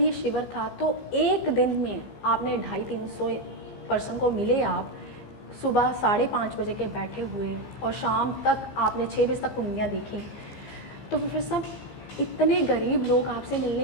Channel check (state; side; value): late; right; 15 ms